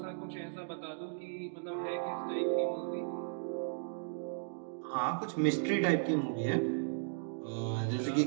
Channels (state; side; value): silent; left; digital silence